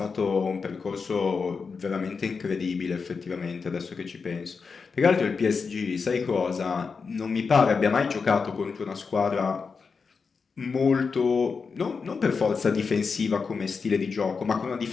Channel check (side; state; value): right; quieter; 5.1 dB